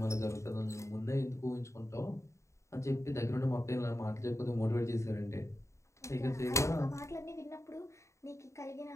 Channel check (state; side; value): late; right; 0.14 ms